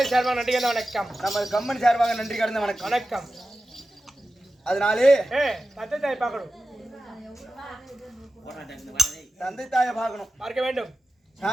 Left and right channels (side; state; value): both; normal; correlation 0.94